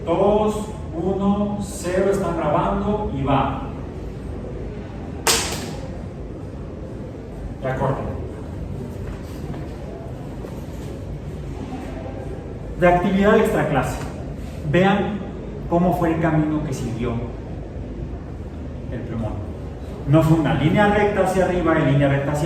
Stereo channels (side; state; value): both; identical; correlation 1.00